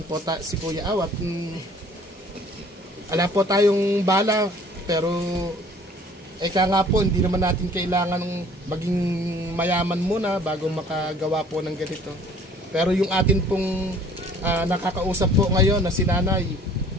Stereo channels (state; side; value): normal; both; correlation 0.54